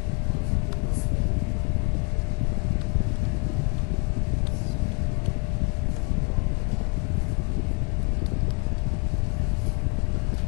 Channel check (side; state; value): right; quieter; 36.0 dB